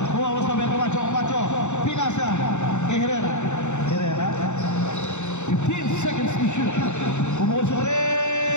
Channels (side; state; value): right; late; 0.83 ms